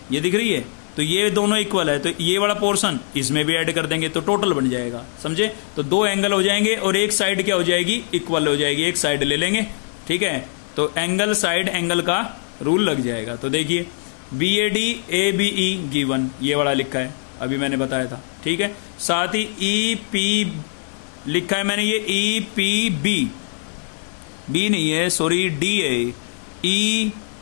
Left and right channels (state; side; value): silent; right; 64 dB below the other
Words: ये दिख रही है, तो ये दोनों इक्वल है, तो ये वाला पोर्शन इसमें भी ऐड कर देंगे, तो टोटल बन जाएगा, समझे। तो 2 एंगल हो जाएंगे और एक साइड क्या हो जाएगी, इक्वल हो जाएगी, एक साइड ले लेंगे, ठीक है। तो एंगल साइड एंगल का रूल लग जाएगा। तो देखिए B A D A B E given, ये वाला लिखा है, अभी मैंने बताया था, ठीक है। साथ ही ई पी लिखा है मैंने, ये ई पी बी, बी नहीं है सॉरी, डी है, ई